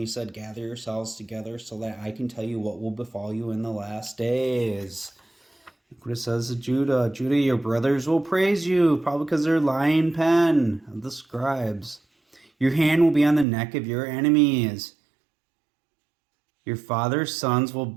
said, gather yourselves together so that I can tell you what will befall you in the last days. Look what it says to Judah. Judah, your brothers will praise you, probably because they're lying pen of the scribes. Your hand will be on the neck of your enemies. Your father's sons will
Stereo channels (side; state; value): left; drops out; at 13.5 s